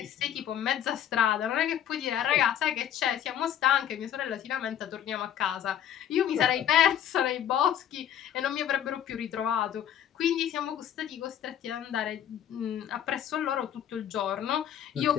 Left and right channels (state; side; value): quieter; right; 10.1 dB